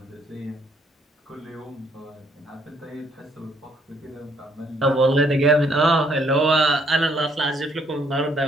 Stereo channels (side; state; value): both; normal; correlation 0.68